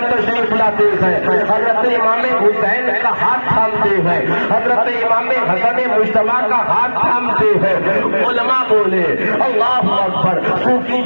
تشریف لاتے ہیں، حضرت امام حسین کا ہاتھ تھامتے ہیں، حضرت امام حسن مصطفیٰ کا ہاتھ تھامتے ہیں۔ علماء بولے اللہ اکبر،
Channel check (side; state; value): both; inverted; correlation -1.00